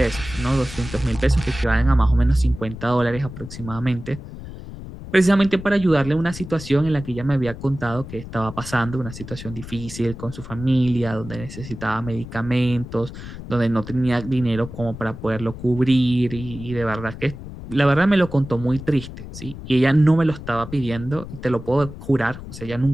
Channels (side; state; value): left; noise; rumble, 12 dB below the sound